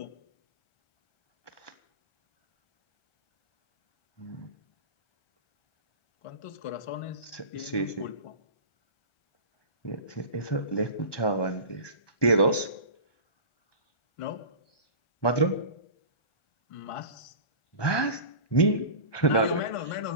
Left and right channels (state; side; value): late; right; 1.2 ms